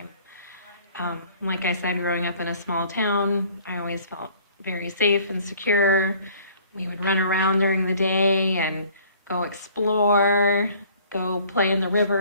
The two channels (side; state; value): both; inverted; correlation -0.54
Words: Like I said, growing up in a small town, I always felt very safe and secure. We would run around during the day and go explore, go play in the